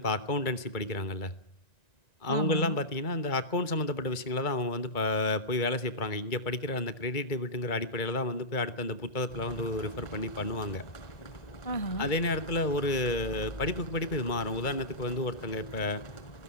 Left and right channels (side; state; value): right; late; 2.2 ms